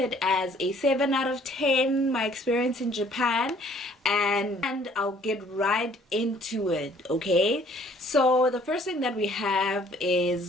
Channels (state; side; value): normal; both; correlation 0.58